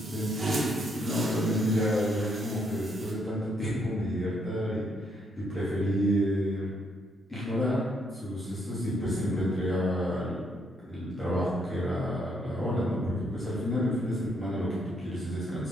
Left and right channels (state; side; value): normal; both; correlation 0.73